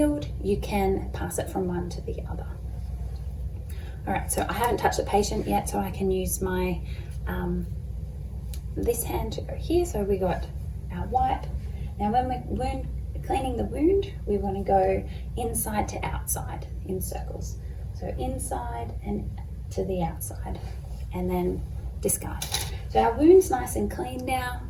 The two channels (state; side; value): identical; both; correlation 1.00